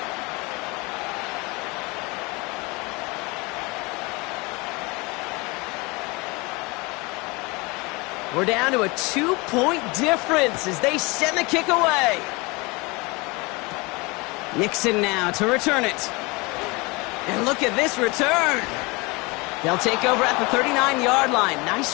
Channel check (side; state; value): right; quieter; 26.0 dB